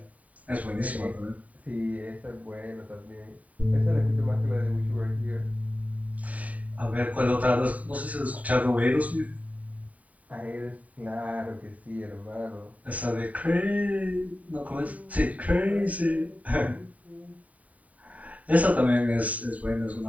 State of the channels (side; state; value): left; late; 0.070 ms